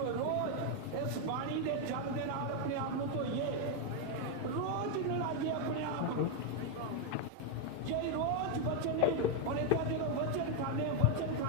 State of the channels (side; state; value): both; different; correlation 0.01